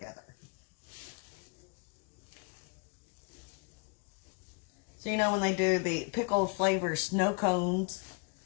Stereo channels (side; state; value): right; quieter; 36.1 dB